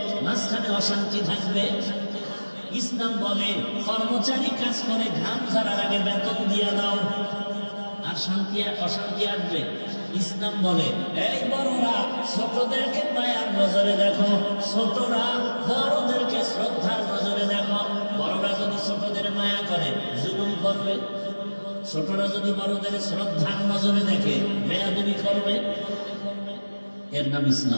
মাঝখানে অশান্তি থাকবে। ইসলাম বলে কর্মচারী কাজ করে, ঘাম ঝরার আগে বেতন দিয়ে দাও, আর শান্তি অশান্তি আসবে। ইসলাম বলে এই বড়রা ছোটদেরকে মায়ার নজরে দেখো, ছোটরা বড়দেরকে শ্রদ্ধার নজরে দেখো। বড়রা যদি ছোটদের মায়া করে, জুলুম করবে। ছোটরা যদি বড়দের শ্রদ্ধার নজরে দেখে, বেয়াদবি করবে। এর নাম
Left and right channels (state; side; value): inverted; both; correlation -1.00